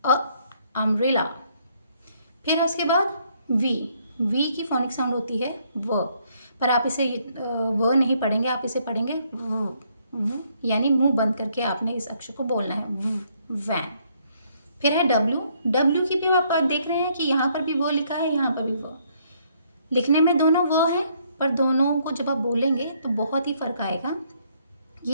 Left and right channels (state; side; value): inverted; both; correlation -0.69